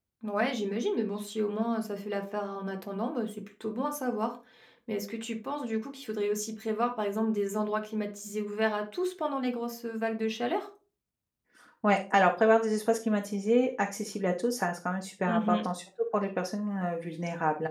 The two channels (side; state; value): both; identical; correlation 1.00